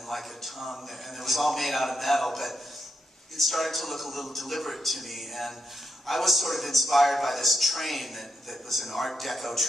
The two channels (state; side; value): normal; both; correlation 0.81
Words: like a tongue, and it was all made out of metal, but it started to look a little deliberate to me, and I was sort of inspired by this train that was an Art Deco